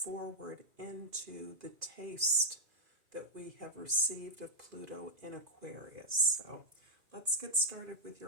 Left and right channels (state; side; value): late; left; 2.5 ms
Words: into the taste that we have received of Pluto in Aquarius. So let's get started with